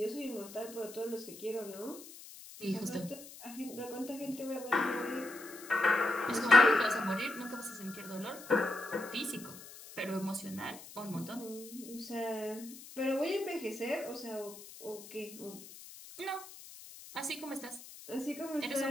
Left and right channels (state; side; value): noise; left; hiss, 16 dB below the sound